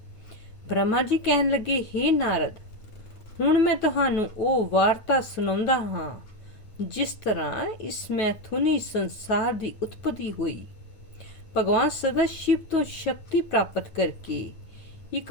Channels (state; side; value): late; right; 9.2 ms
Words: ब्रह्मा जी कहन लगे, हे नारद, हुण मैं तुहानू ओ वार्ता सुणाउंदा हां जिस तरह इस मैथुनी संसार की उत्पत्ति हुई। भगवान सदाशिव तो शक्ति प्राप्त करके एक